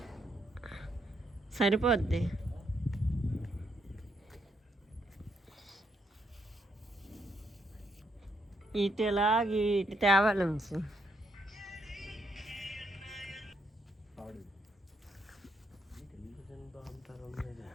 సరిపోద్ది. ఇటు తేవాలి.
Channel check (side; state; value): both; normal; correlation 0.75